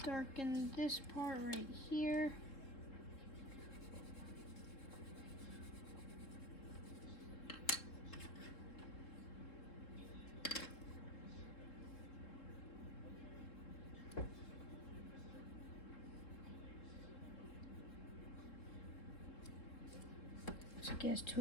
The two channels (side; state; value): right; late; 3.7 ms